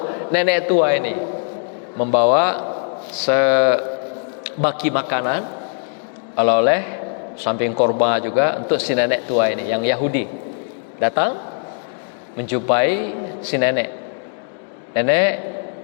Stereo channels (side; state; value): right; silent; 63 dB below the other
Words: nenek tua ini, membawa sebaki makanan, oleh-oleh, samping korban juga untuk si nenek tua ini yang Yahudi. Datang menjumpai si nenek. Nenek